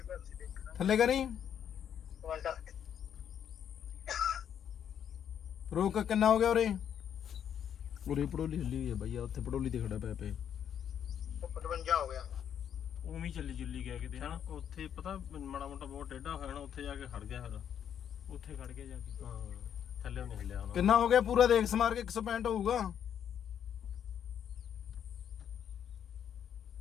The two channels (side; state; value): right; quieter; 9.0 dB